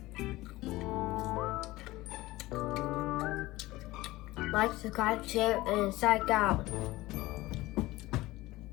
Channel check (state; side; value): quieter; right; 18.7 dB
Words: like, subscribe, share, and psych out.